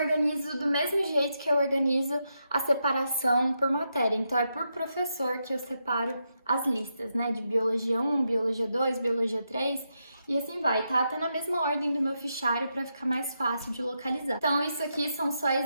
do mesmo jeito que eu organizo a separação por matéria. Então é por professor que eu separo as listas, né? De Biologia 1, Biologia 2, Biologia 3 e assim vai. Tá até na mesma ordem do meu fichário para ficar mais fácil de localizar. Então isso aqui são só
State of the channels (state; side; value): inverted; both; correlation -0.83